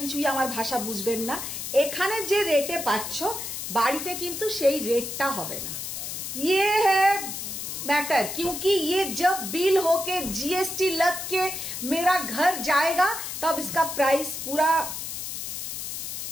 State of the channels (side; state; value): left; noise; hiss, 6 dB below the sound